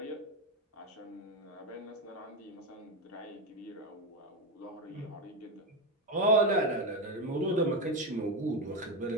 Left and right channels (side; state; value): both; normal; correlation 0.12